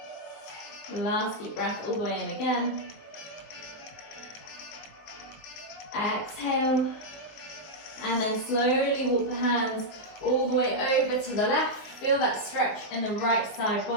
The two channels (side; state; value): right; late; 19 ms